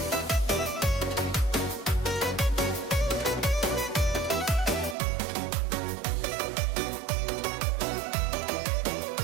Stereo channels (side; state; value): left; drops out; at 5.0 s